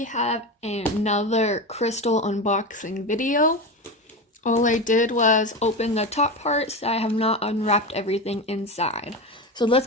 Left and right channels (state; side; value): normal; both; correlation 0.21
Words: have another crystal unboxing video. All I did was open the top parts. I have not unwrapped everything inside. So let's